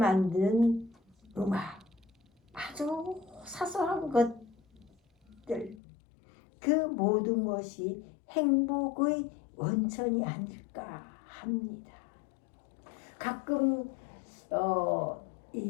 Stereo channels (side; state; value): right; drops out; at 5.8 s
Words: 음악, 아주 사소한 것들, 그 모든 것이 행복의 원천이 아닐까 합니다. 가끔